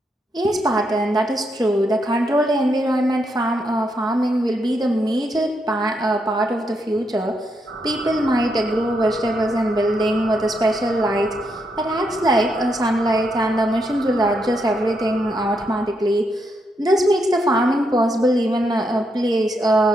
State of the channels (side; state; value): both; normal; correlation 0.80